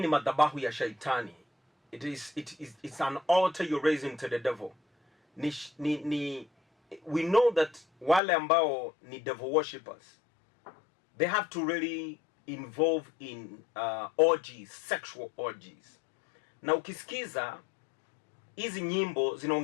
ni madhabahu ya shaitani. It's an altar you're raising to the devil. We know that wale ambao ni devil worshippers, they have to really involve in orgies, sexual orgies. Na ukisikiza hizi nyimbo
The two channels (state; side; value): drops out; right; at 8.2 s